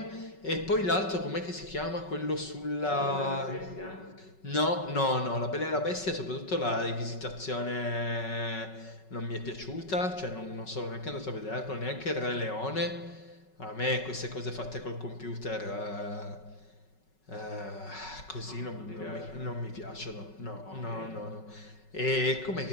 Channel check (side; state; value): right; late; 5.3 ms